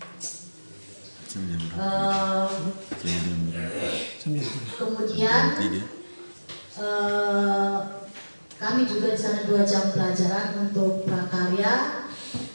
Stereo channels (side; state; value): both; inverted; correlation -1.00